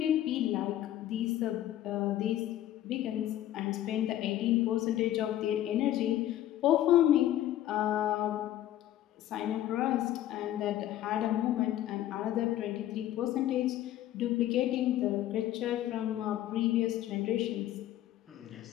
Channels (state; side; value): quieter; right; 12.9 dB